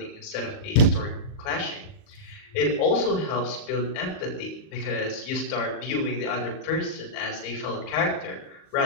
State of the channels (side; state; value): right; late; 38 ms